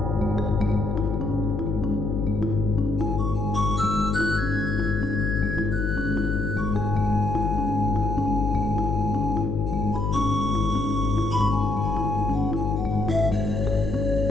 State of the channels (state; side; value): noise; left; hum, 2 dB below the sound